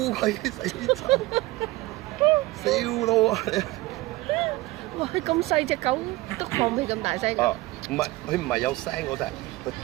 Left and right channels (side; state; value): left; quieter; 19.7 dB